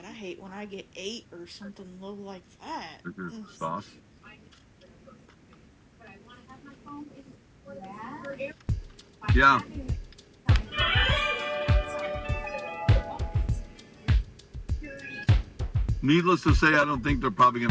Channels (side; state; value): both; identical; correlation 1.00